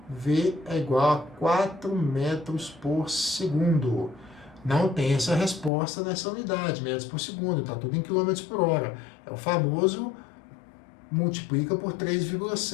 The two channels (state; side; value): drops out; right; at 5.7 s